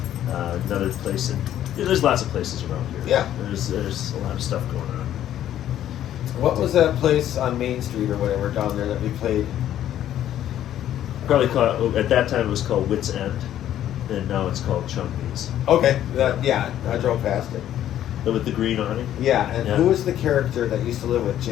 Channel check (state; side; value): quieter; right; 11.6 dB